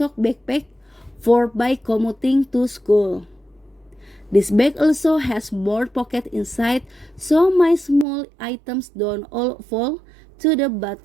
backpack for by commuting to school. This bag also has more pocket inside so my small items don't all fall to the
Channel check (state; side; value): drops out; left; at 8.1 s